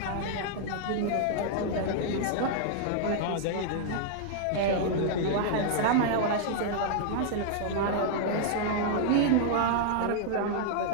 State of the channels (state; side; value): different; both; correlation -0.01